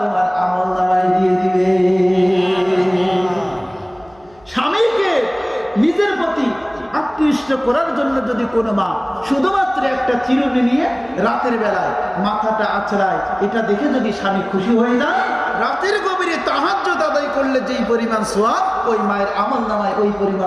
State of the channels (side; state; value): left; noise; hum, 30 dB below the sound